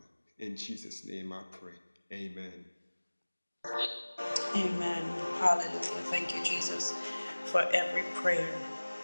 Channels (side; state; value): both; inverted; correlation -1.00